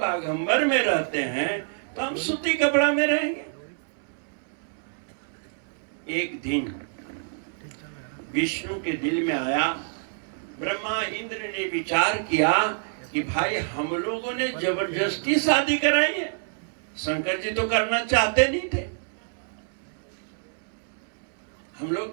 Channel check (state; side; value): silent; left; 60 dB below the other